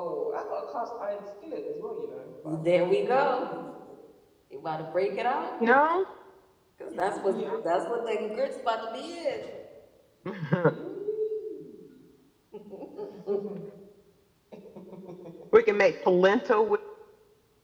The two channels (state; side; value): identical; both; correlation 1.00